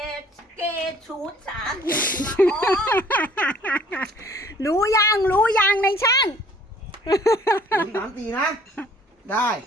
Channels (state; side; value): normal; both; correlation 0.56